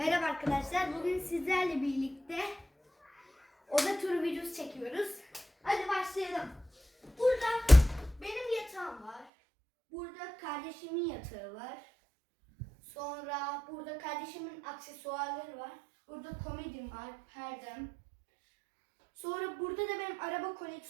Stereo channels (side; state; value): left; drops out; at 9.2 s